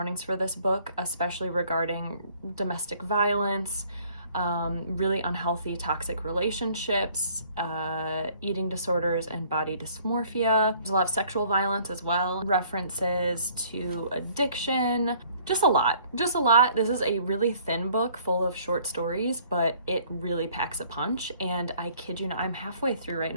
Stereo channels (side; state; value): both; inverted; correlation -0.58